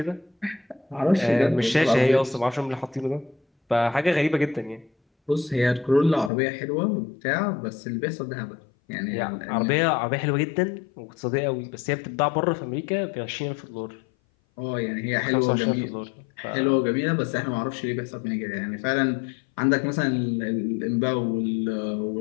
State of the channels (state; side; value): drops out; right; at 6.3 s